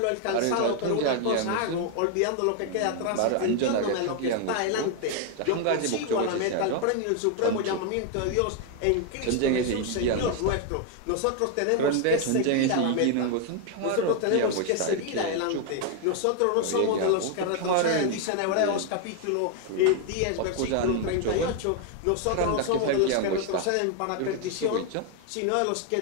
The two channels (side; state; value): both; different; correlation 0.00